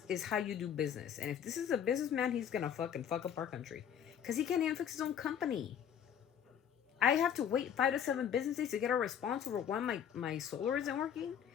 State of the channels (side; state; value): right; quieter; 8.7 dB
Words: is how you do business. And if this is a businessman, he's gonna fuck up our country. Because he can't even fix his own company. I have to wait 5 to 7 business days to get a response over why my solar isn't working.